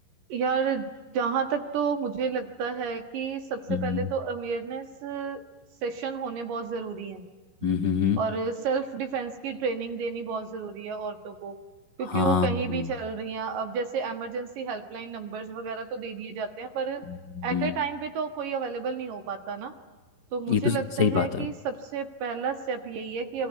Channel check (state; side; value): late; left; 11 ms